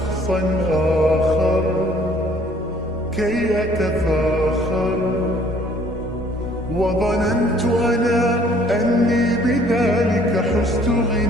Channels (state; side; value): normal; both; correlation 0.58